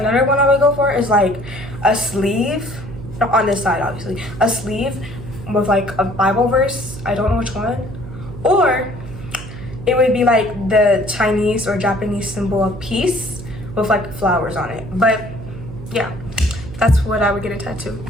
one I would go for is like a sleeve, not on this side obviously, a sleeve with like a Bible verse. I don't know which one. Or it would be like the Chinese or Japanese symbol of peace with like flowers on it. But yeah, that's what I would get a tattoo.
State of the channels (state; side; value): noise; right; hum, 12 dB below the sound